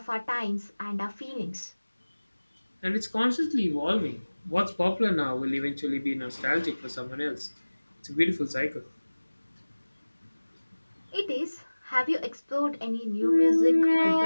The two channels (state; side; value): inverted; both; correlation -1.00